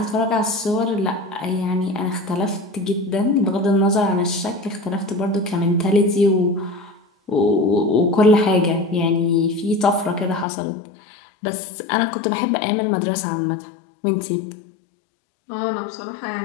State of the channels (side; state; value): right; drops out; at 10.5 s